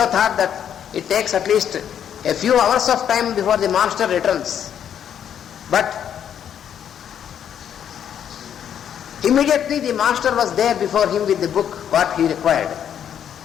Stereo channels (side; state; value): right; quieter; 9.1 dB